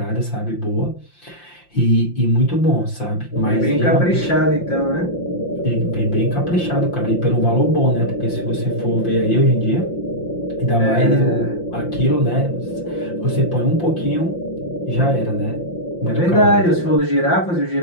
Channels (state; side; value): late; right; 5.7 ms